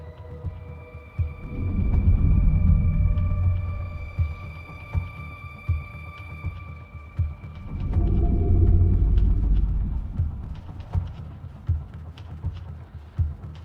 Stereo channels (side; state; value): both; identical; correlation 1.00